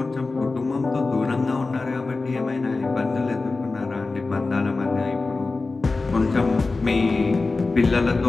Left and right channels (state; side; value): quieter; right; 3.7 dB